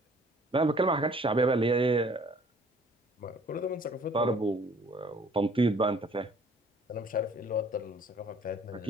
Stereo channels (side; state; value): both; normal; correlation 0.56